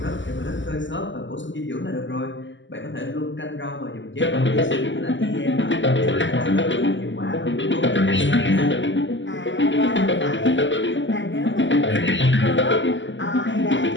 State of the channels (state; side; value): late; right; 0.54 ms